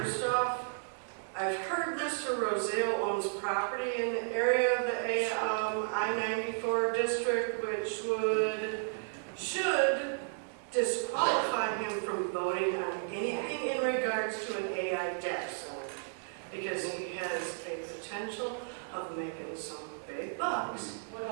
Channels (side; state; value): left; silent; 55 dB below the other